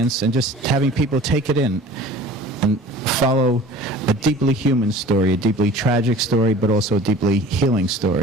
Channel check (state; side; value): normal; both; correlation 0.44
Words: and just having people take it in and follow a deeply human story, a deeply tragic story, but also a deeply healing